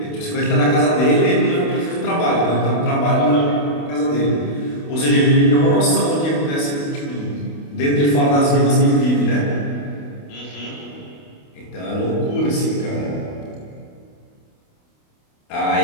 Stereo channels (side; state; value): right; late; 28 ms